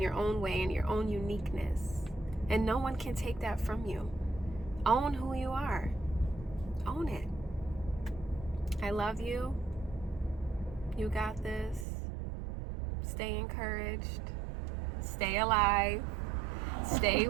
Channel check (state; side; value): drops out; left; at 11.9 s